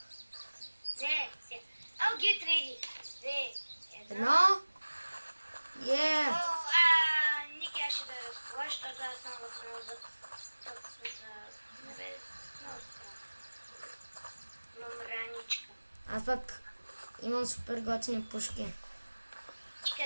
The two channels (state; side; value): inverted; both; correlation -1.00